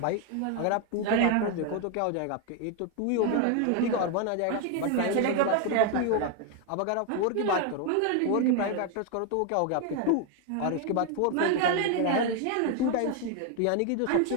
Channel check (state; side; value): different; both; correlation 0.01